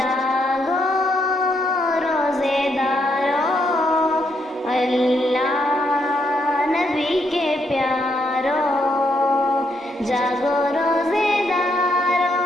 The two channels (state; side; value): normal; both; correlation 0.76